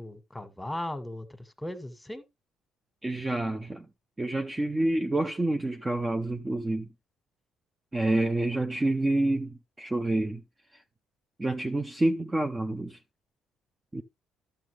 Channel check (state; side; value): normal; both; correlation 0.96